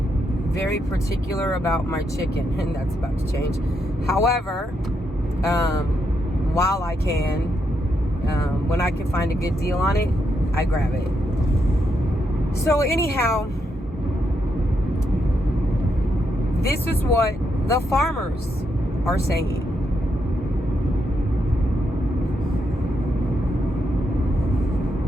very particular about my chicken, and that's about to change. However, while I can, when I can find a good deal on it, I grab it. So anyhow, this is what the farmers are saying.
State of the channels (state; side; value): normal; both; correlation 0.80